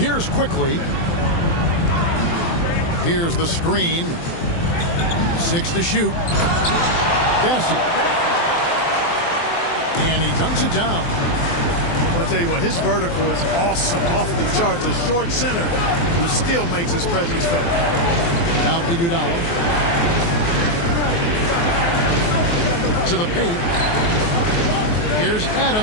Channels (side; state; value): right; late; 23 ms